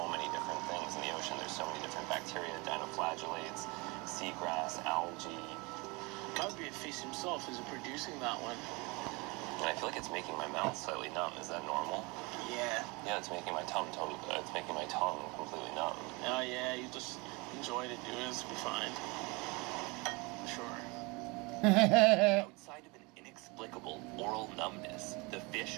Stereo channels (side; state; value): left; quieter; 26.9 dB